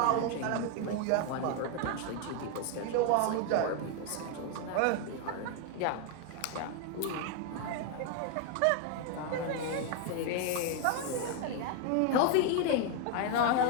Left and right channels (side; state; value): both; different; correlation 0.01